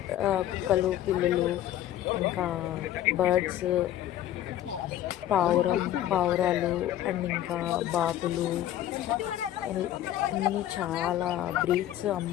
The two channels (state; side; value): quieter; right; 12.4 dB